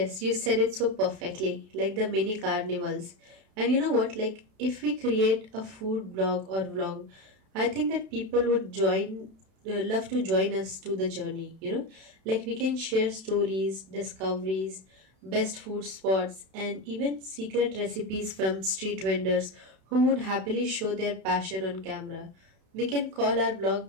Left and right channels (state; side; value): late; left; 32 ms